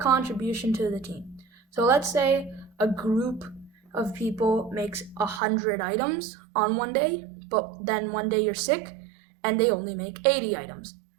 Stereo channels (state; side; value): drops out; left; at 5.4 s